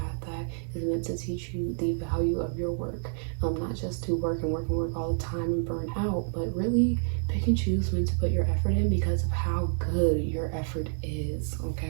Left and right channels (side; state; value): left; silent; digital silence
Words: that is meant to teach you the value of your work, not just to work and work and work all the time and burn out, but really pick and choose when to put your effort in because of how good your effort is,